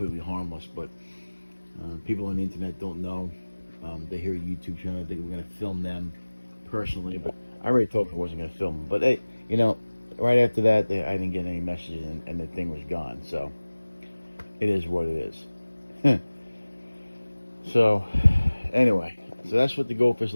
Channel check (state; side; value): inverted; both; correlation -1.00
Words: harmless, but people on the internet don't know. They hear a YouTube channel, they think we're going to film them personally, but I already told them I wasn't going to film them. But hey, right after that, I didn't get any messages, and the thing was gone. So it is what it is. So anyway, so that's what the goldfish